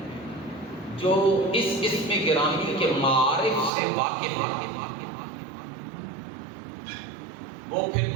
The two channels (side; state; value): left; drops out; at 3.7 s